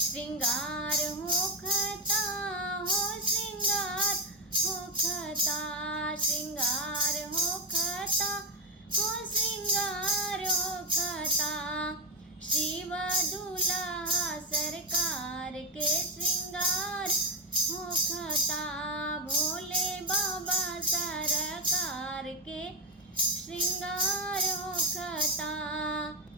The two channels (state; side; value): normal; both; correlation 0.07